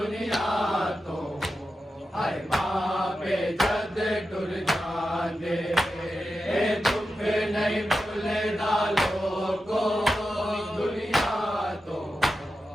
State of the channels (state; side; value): normal; both; correlation 0.90